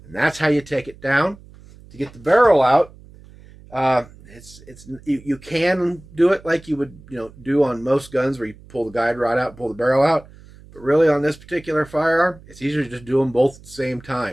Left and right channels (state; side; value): noise; right; hum, 22 dB below the sound